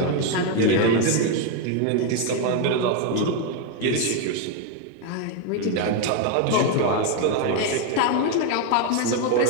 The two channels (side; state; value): both; different; correlation 0.01